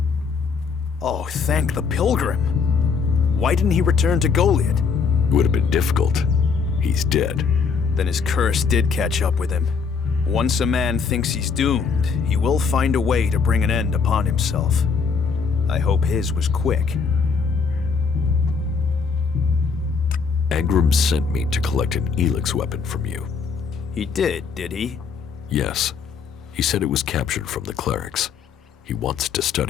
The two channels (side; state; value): right; quieter; 5.5 dB